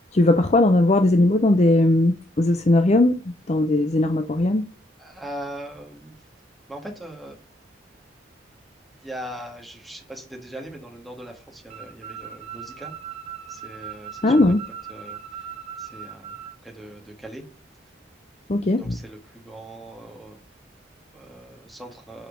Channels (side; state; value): both; normal; correlation 0.72